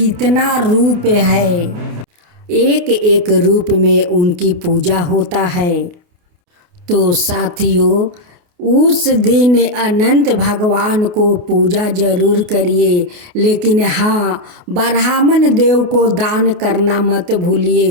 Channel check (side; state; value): left; late; 28 ms